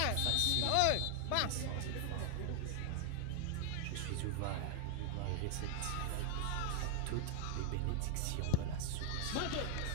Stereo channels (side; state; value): both; different; correlation 0.00